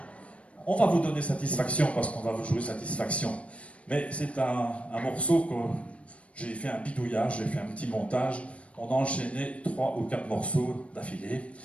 On va vous donner satisfaction parce qu'on va vous jouer satisfaction. Mais c'est un morceau que j'ai fait un bidouillage, j'ai fait un petit montage. On a enchaîné 3 ou 4 morceaux d'affilée.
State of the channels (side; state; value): right; late; 0.063 ms